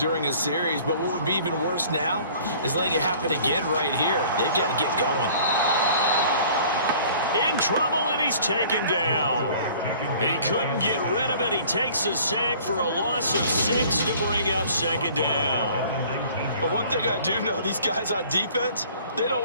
a series, but what would be even worse now is letting it happen again right here. They've got to get going. In trouble, and he's taken down. He couldn't get rid of it. He takes a sack for a loss of 6 to bring up 2nd down. But one thing I do know, these guys on defense, they don't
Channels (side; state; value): both; inverted; correlation -0.51